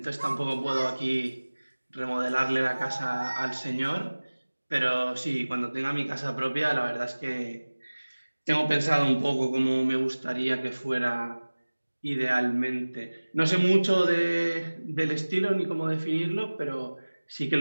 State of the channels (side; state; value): both; inverted; correlation -1.00